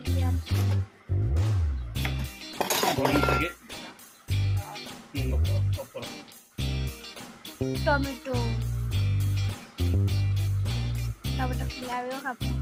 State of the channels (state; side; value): identical; both; correlation 1.00